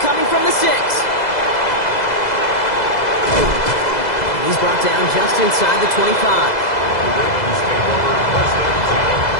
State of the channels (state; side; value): late; right; 2.0 ms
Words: from the 6. He's brought down just inside the 25.